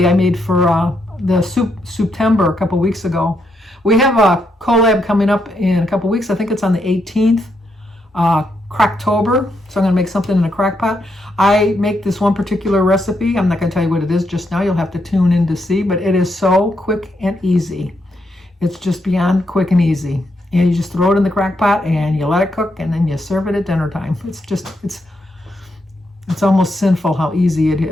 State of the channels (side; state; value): both; normal; correlation 0.80